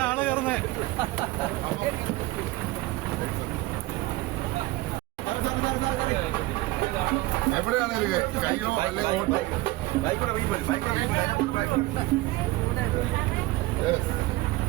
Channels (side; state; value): left; quieter; 19.2 dB